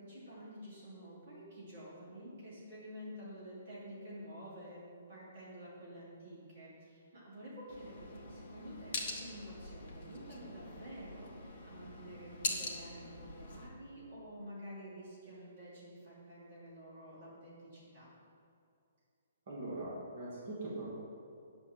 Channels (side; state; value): both; inverted; correlation -0.60